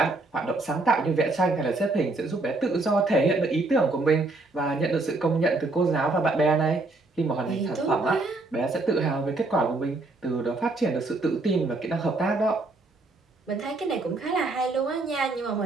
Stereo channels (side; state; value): left; quieter; 3.2 dB